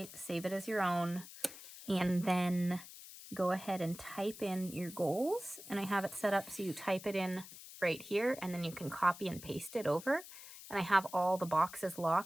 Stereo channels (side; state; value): left; noise; hiss, 15 dB below the sound